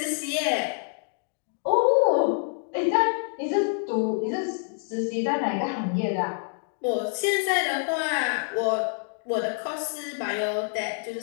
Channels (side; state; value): right; silent; 55 dB below the other